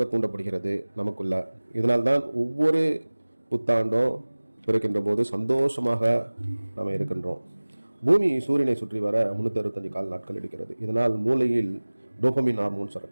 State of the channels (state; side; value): inverted; both; correlation -1.00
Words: தூண்டப்படுகிறது நமக்குள்ள. இதனால்தான் ஒவ்வொரு புத்தாண்டும் பிறக்கின்ற போது சந்தோஷமாக நாம் இருக்கின்றோம். பூமி சூரியனை சுற்றி வர 365 கால நாட்கள் எடுக்கிறது. இதனால் மூளையில் டோபமின் ஹார்மோன்